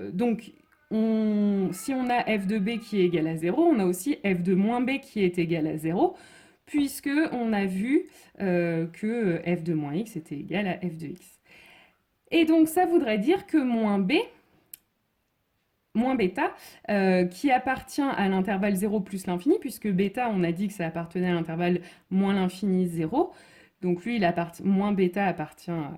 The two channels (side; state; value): both; identical; correlation 1.00